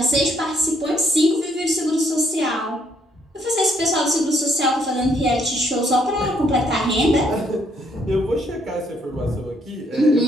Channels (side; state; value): both; normal; correlation 0.70